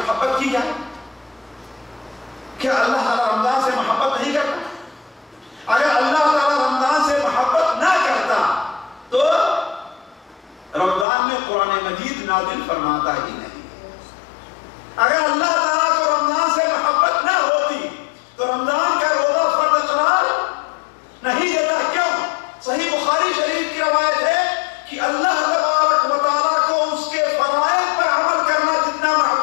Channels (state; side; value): drops out; right; at 11.1 s